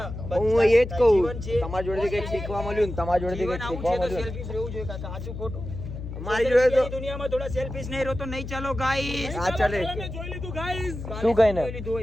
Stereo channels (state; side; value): noise; left; hum, 8 dB below the sound